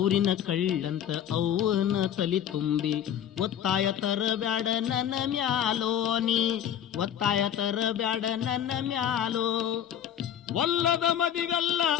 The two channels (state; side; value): quieter; right; 9.9 dB